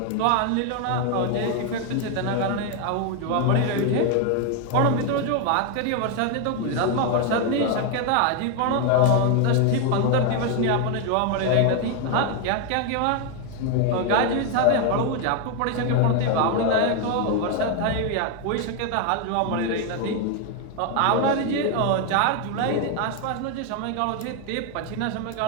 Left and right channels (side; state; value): both; different; correlation 0.01